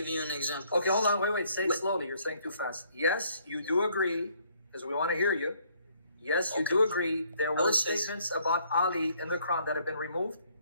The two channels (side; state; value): both; inverted; correlation -0.65